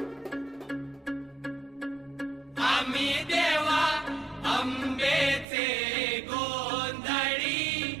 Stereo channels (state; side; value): drops out; left; at 5.5 s